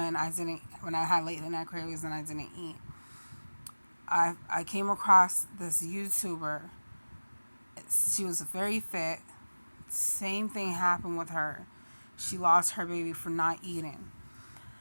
I had late night cravings and I didn't eat. I came across this YouTuber. She was very fit, same thing happened with her. She lost her baby for not eating.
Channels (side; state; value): both; inverted; correlation -1.00